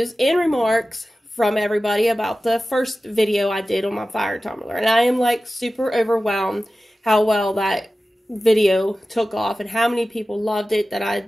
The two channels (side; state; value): both; normal; correlation 0.95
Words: and remarks from everybody about the first video I did on my Fire Tumbler, and I am like super overwhelmed how well that video took off and how many people loved it, that I